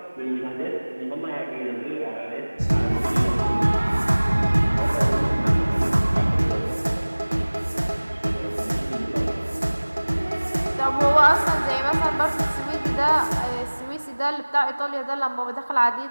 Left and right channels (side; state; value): both; inverted; correlation -1.00